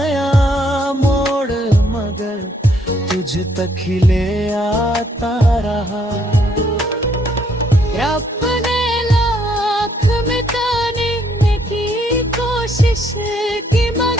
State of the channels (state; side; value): normal; both; correlation 0.69